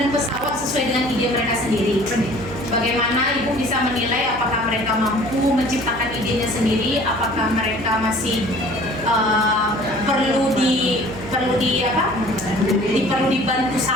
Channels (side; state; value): right; noise; hum, 12 dB below the sound